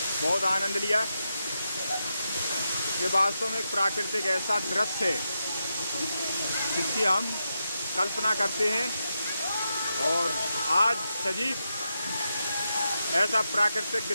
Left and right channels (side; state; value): both; inverted; correlation -0.86